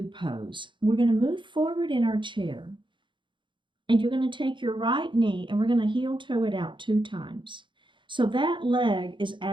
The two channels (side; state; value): left; late; 0.23 ms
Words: pose. We're going to move forward in our chair. And you're going to take your right knee and we're going to heel toe it out 2 times. So that leg is